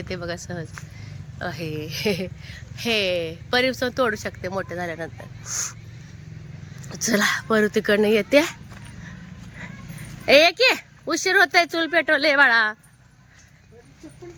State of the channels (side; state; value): both; identical; correlation 1.00